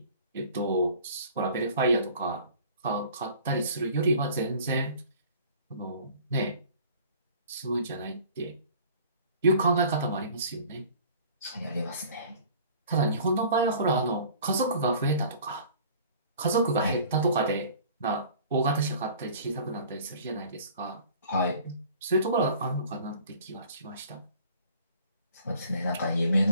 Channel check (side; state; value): both; inverted; correlation -0.48